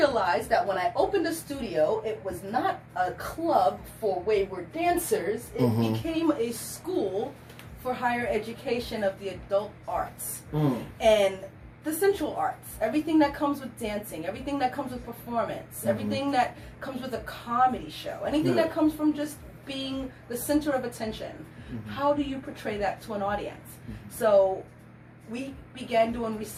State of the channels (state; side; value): identical; both; correlation 1.00